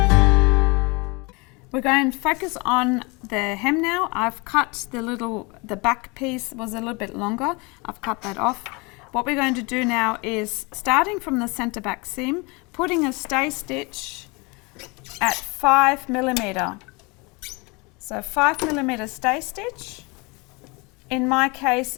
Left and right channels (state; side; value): quieter; right; 27.8 dB